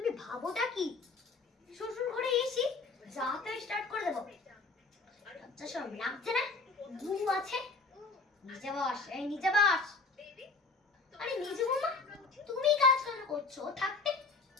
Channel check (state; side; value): quieter; right; 4.0 dB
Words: ভাবোটা কি? শ্বশুর ঘরে এসি যাতে স্টার্ট করে দেবো। লজ্জা শরম লাগছে না? বউ আছে। নিচে বস, এই নিচে বস। আরে নিচে বৌমা, তুমি কাজ কেন করছো? থাকতে